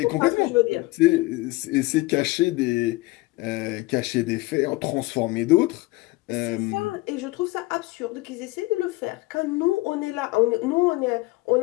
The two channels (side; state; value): right; quieter; 21.1 dB